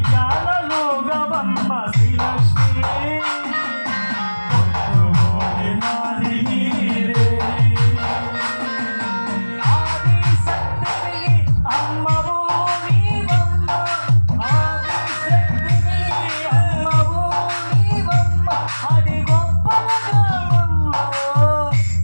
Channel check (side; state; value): both; inverted; correlation -1.00